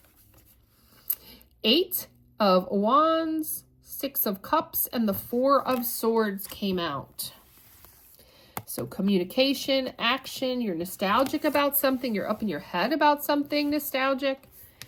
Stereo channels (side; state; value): both; identical; correlation 1.00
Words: 8 of Wands, 6 of Cups, and the 4 of Swords came out. So communication, action, you're nostalgic about something, you're up in your head about something nostalgic.